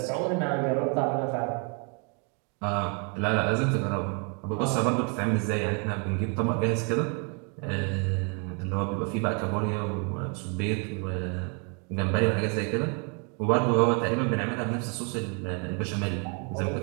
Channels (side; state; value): left; quieter; 36.6 dB